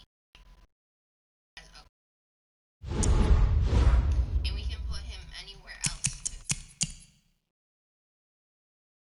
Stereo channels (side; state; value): both; identical; correlation 1.00